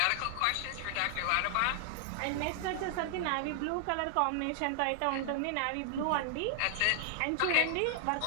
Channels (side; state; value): both; different; correlation -0.01